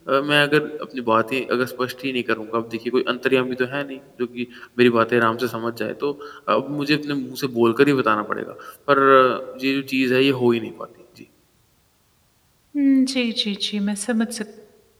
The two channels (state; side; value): identical; both; correlation 1.00